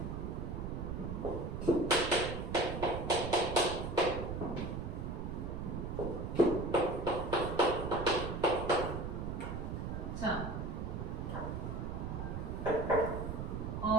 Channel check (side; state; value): right; noise; rumble, 4 dB below the sound